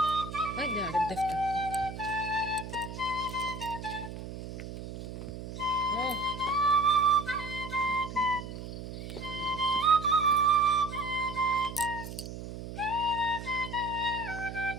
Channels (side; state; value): right; noise; hum, 9 dB below the sound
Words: ভাই দে আরে দেখতে ও